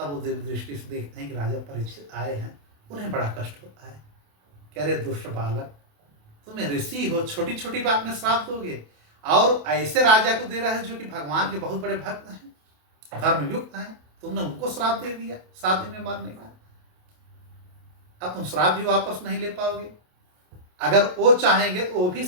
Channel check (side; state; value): left; late; 28 ms